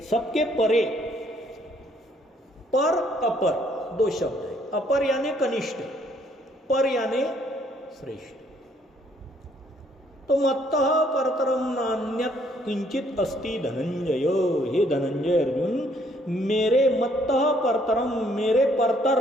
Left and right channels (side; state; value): both; normal; correlation 0.66